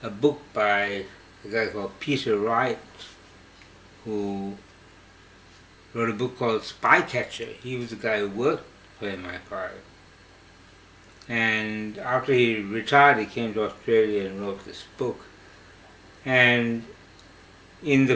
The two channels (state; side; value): identical; both; correlation 1.00